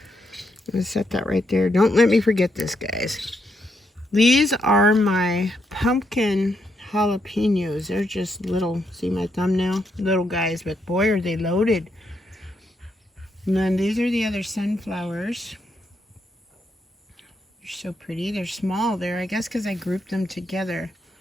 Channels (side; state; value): both; normal; correlation 0.79